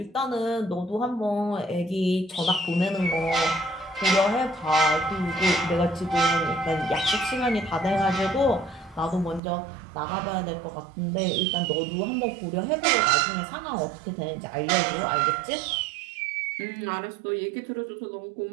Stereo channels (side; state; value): left; drops out; at 9.4 s